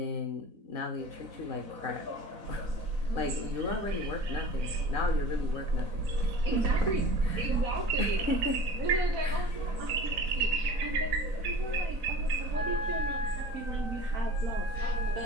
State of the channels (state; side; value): late; left; 4.0 ms